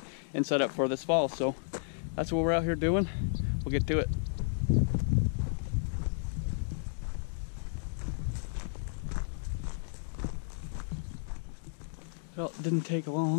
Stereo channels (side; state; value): right; silent; digital silence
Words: and set up for this fall. So that's what we're out here doing. We'll get to it. Well, it didn't take